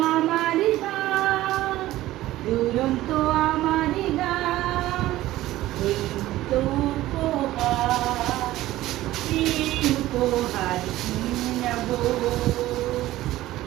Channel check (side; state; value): left; quieter; 15.8 dB